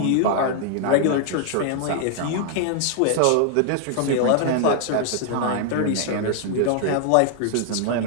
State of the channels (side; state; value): both; different; correlation 0.00